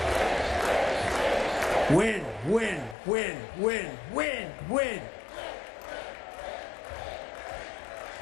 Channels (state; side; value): drops out; right; at 3.0 s